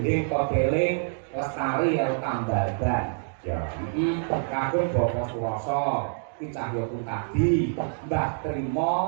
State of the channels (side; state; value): left; silent; digital silence